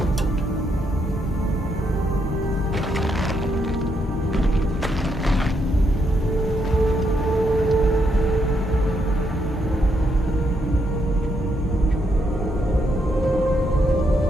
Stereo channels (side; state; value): both; normal; correlation 0.77